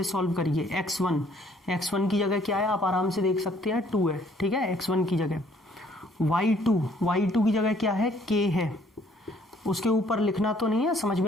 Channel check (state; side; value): normal; both; correlation 0.62